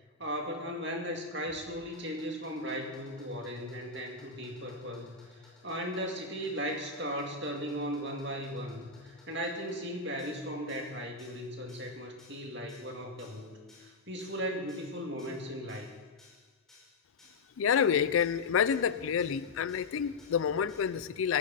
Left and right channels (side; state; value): right; quieter; 4.2 dB